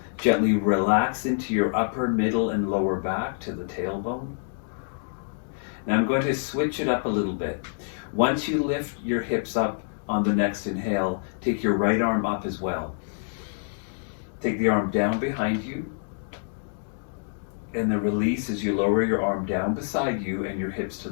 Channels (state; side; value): silent; right; digital silence